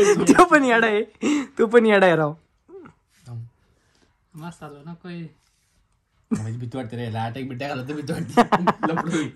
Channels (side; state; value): both; identical; correlation 1.00